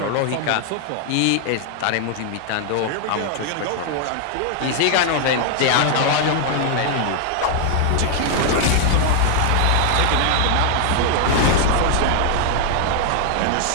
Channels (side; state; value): both; different; correlation 0.00